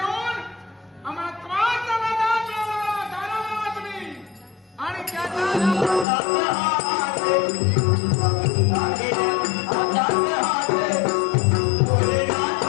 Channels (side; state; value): right; drops out; at 6.1 s